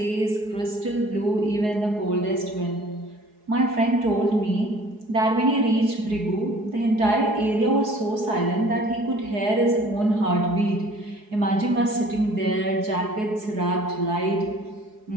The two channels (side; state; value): left; late; 4.7 ms